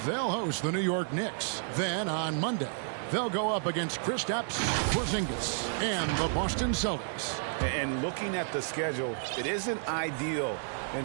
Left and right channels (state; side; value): silent; left; 57 dB below the other